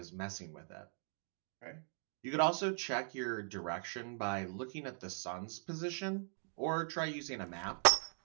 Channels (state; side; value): silent; left; 51 dB below the other